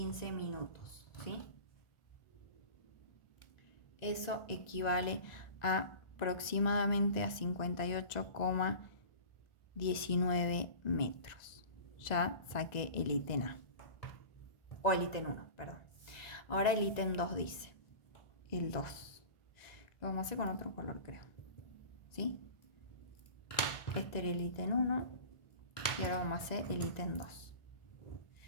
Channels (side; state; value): right; late; 1.9 ms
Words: minutos, ¿sí? Eso equivale a aproximadamente a 58,19 metros. Ya saqué el ítem A, o el ítem 1, perdón. Ahora el ítem 2 dice, el 2. Lo vamos a hacer con otro color, creo. ¿Sí? Este era el ítem 1 y ahora vamos a hacer el ítem 2.